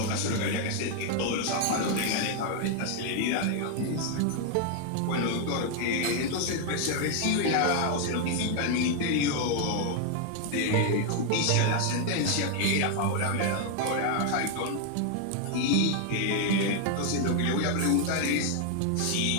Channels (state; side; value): different; both; correlation 0.00